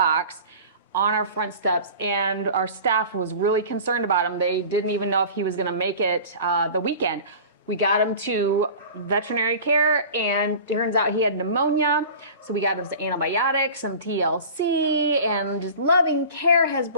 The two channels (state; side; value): inverted; both; correlation -0.38